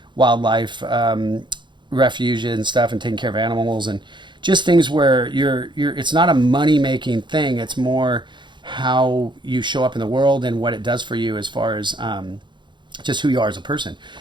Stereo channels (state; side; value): late; left; 0.23 ms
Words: wildlife refuge and stuff, and taking care of animals, and just things where you're it's not a money making thing. It's more how you show up in the world and what it does for you as far as just who you are as a person.